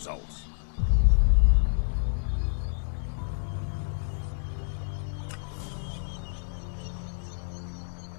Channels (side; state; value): right; silent; digital silence